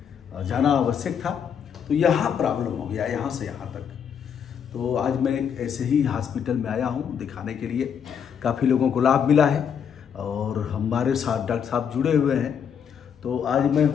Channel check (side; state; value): right; quieter; 7.7 dB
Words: जाना आवश्यक था तो यहाँ प्रॉब्लम हो गया, यहाँ से यहाँ तक। तो आज मैं एक ऐसे ही हॉस्पिटल में आया हूँ दिखाने के लिए। काफ़ी लोगों को लाभ मिला है और हमारे साथ डॉक्टर साहब जुड़े हुए हैं। तो आज मैं